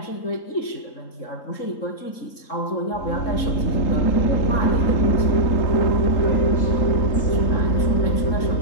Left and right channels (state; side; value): late; right; 3.8 ms